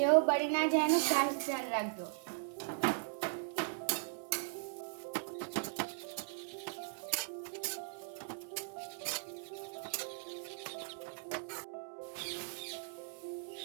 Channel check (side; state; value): left; silent; 52 dB below the other